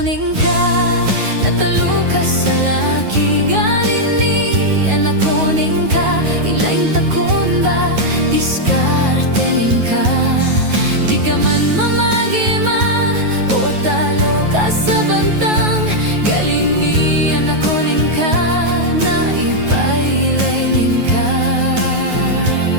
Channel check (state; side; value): late; left; 9.3 ms